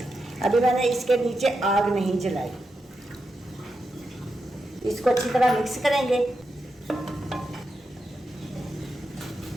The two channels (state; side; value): normal; both; correlation 0.87